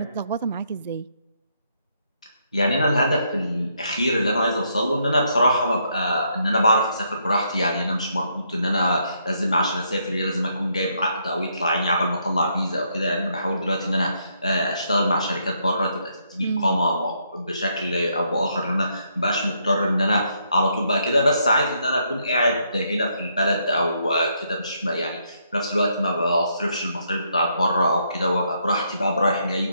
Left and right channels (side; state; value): both; inverted; correlation -0.74